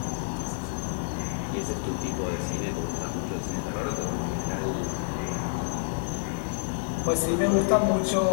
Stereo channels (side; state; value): right; silent; 59 dB below the other